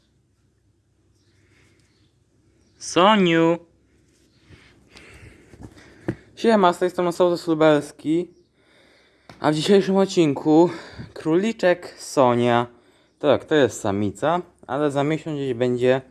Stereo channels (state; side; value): identical; both; correlation 1.00